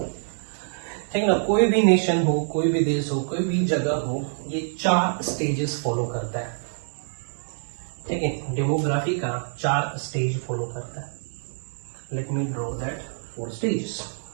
ठीक ना। कोई भी नेशन हो, कोई भी देश हो, कोई भी जगह हो, ये 4 स्टेजेस फॉलो करता है, ठीक है। डेमोग्राफी का 4 स्टेज फॉलो करता है। Let me draw that 4 stage.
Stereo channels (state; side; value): silent; left; 61 dB below the other